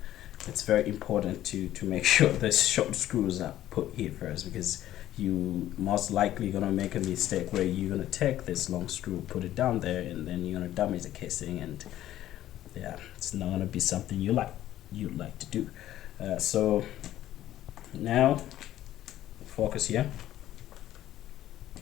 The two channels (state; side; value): quieter; right; 13.2 dB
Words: It's very important to make sure the short screws are put here first, because you most likely gonna make a mistake where you're gonna take this long screw, put it down there, and then you're gonna damage the casing, and yeah, it's not gonna be something you'd like to do. So now focus here.